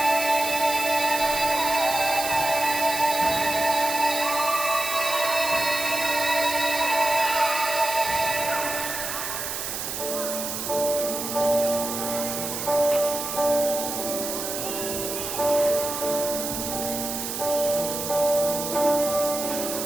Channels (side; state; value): right; noise; hiss, 4 dB below the sound